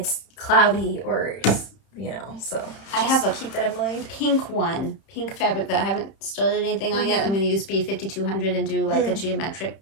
cloudy or, you know, so I have a keep that in mind. pink fabric that I haven't started anything on yet. I'm going to use B5200 and do like a geometric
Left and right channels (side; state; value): right; late; 31 ms